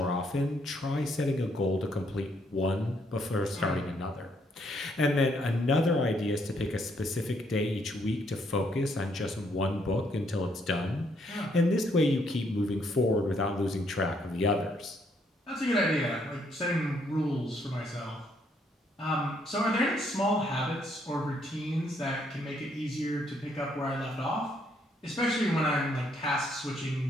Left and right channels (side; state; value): both; normal; correlation 0.71